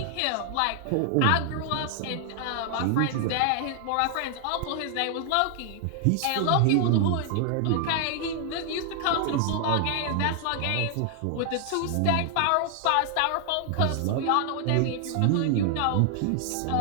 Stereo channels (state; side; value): different; both; correlation 0.00